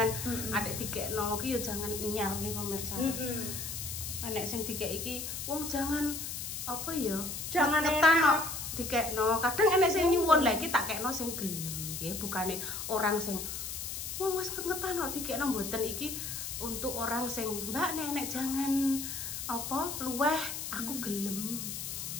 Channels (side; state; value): left; noise; hiss, 5 dB below the sound